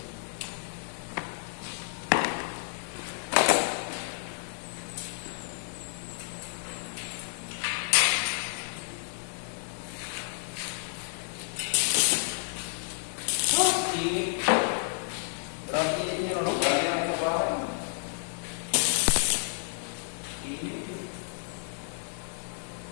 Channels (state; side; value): silent; right; 57 dB below the other